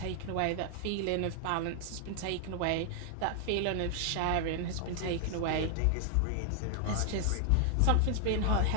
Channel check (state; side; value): different; both; correlation 0.00